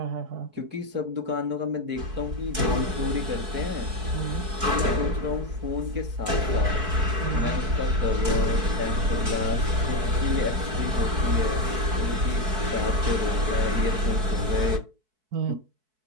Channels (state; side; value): late; left; 4.6 ms